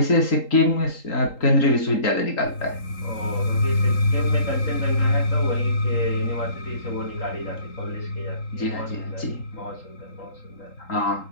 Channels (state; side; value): late; right; 3.8 ms